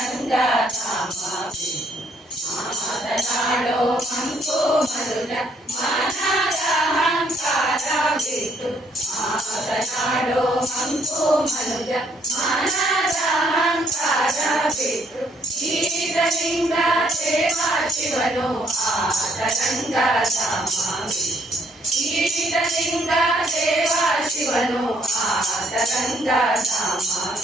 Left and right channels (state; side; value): normal; both; correlation 0.67